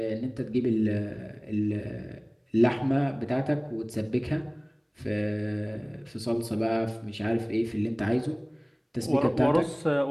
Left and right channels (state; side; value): identical; both; correlation 1.00